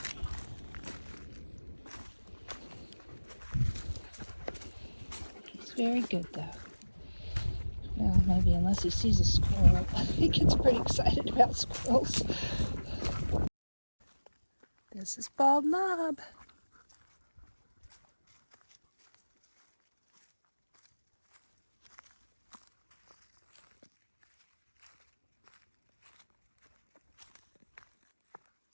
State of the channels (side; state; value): both; inverted; correlation -1.00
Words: He's very good though. Well, maybe unless he sees a squirrel. He gets pretty excited about squirrels. This is Bald Knob.